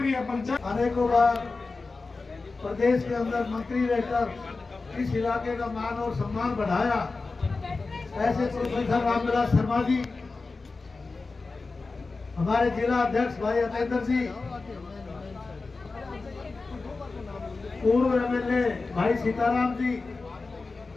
पंचायत अनेकों बार प्रदेश के अंदर मंत्री रहकर इस इलाके का मान और सम्मान बढ़ाया। ऐसे प्रोफेसर रामविलास शर्मा जी, हमारे जिला अध्यक्ष भाई अतेंद्र जी, पूर्व एमएलए भाई सीताराम जी,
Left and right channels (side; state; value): right; quieter; 3.9 dB